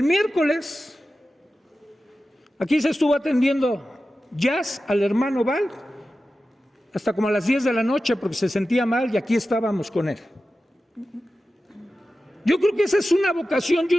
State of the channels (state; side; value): normal; both; correlation 0.94